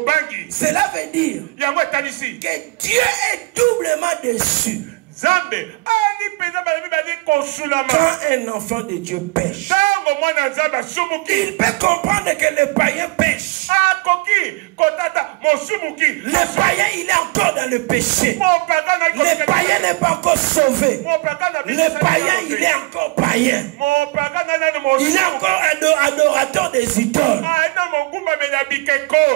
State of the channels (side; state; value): left; quieter; 24.9 dB